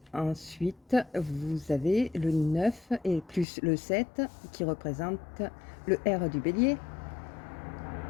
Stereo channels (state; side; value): drops out; right; at 3.5 s